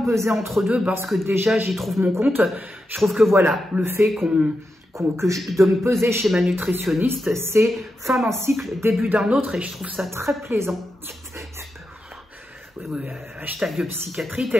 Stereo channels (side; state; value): both; normal; correlation 0.88